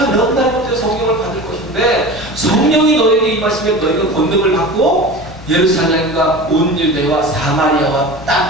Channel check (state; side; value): normal; both; correlation 0.33